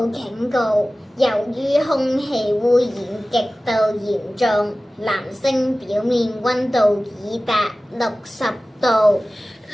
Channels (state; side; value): normal; both; correlation 0.97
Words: 警告！由於空氣污染極度嚴重，藍星表面溫度已達60度。